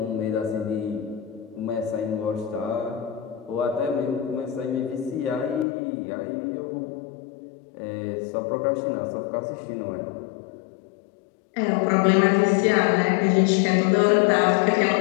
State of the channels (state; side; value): drops out; right; at 5.7 s